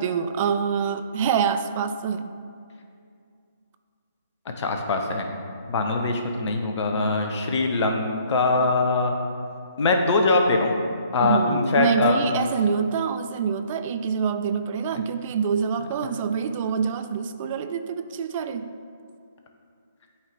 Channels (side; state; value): both; inverted; correlation -0.55